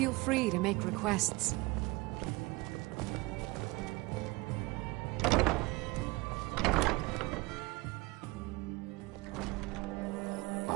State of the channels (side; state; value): left; quieter; 23.4 dB